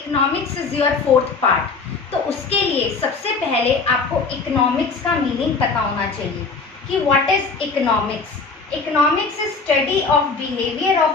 is your 4th part. तो उसके लिए सबसे पहले आपको इकोनॉमिक्स का मीनिंग पता होना चाहिए कि what is economics. Economics is study of behavior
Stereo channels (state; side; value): quieter; right; 4.4 dB